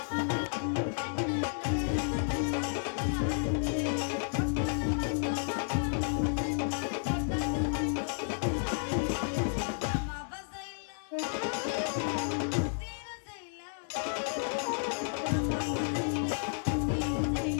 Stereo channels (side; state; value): right; silent; 56 dB below the other